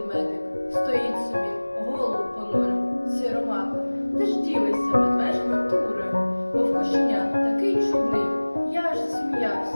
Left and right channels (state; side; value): inverted; both; correlation -1.00